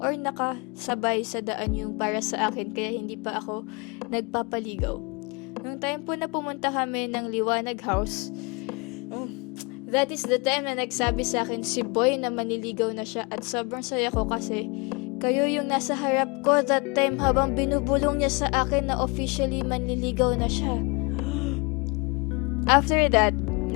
or nakasabay sa daan yung para sa akin kaya hindi pa ako nagpapaligaw. Nung time po na pumunta kami ng Liwanag House, that is the time na nagsabi sa akin si Boy na maniligaw na siya at sobrang saya ko kasi kayo yung nasa harap ko that time habang binubulong niya sa akin na officially manliligaw na siya. After that,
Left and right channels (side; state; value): right; quieter; 29.6 dB